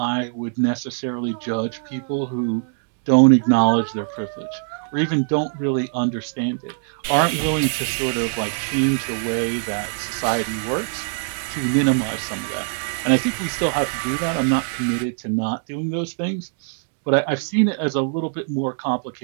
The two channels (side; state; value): left; silent; digital silence